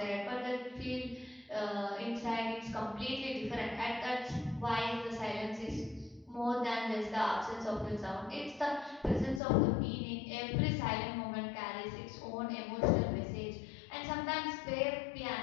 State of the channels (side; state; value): right; drops out; at 9.4 s